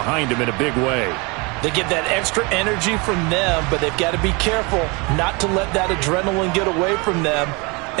them in a big way. They get that extra energy from them, but they've got to be careful not to let that adrenaline get away from them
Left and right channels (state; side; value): quieter; left; 28.3 dB